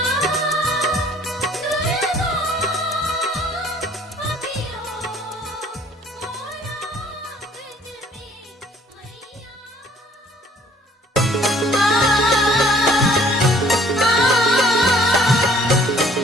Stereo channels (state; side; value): normal; both; correlation 0.58